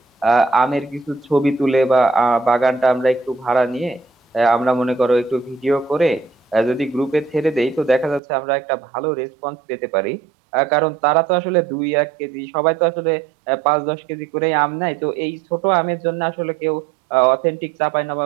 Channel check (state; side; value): drops out; left; at 8.2 s